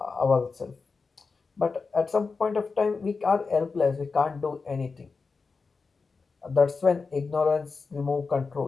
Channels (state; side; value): quieter; right; 4.5 dB